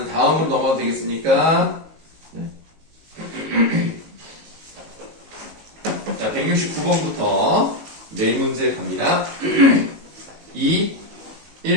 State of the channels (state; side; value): late; left; 19 ms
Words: 다음으로 넘어가도 되겠습니까? 네. 자, 169번부터 네 문제 갑니다. 2,